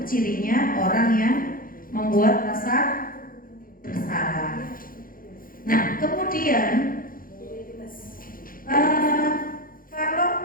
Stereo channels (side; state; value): right; late; 0.41 ms